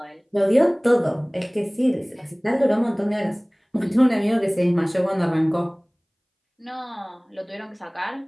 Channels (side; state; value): both; identical; correlation 1.00